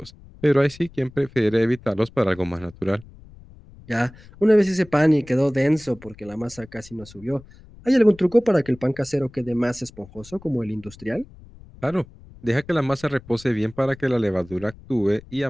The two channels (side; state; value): left; noise; rumble, 22 dB below the sound